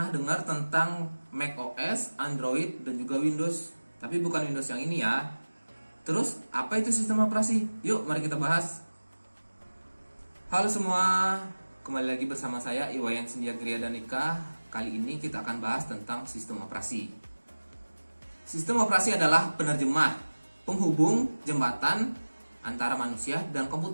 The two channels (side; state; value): both; inverted; correlation -1.00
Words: dengar tentang macOS, Android, dan juga Windows. Tapi bukan Windows yang ini ya. Terus, apa itu sistem operasi? Yuk, mari kita bahas. Halo semua, kembali lagi bersama saya Iwayan Sindia Gria Danika. Kali ini kita akan bahas tentang sistem operasi. Sistem operasi adalah penerjemah, penghubung, jembatan antara manusia dan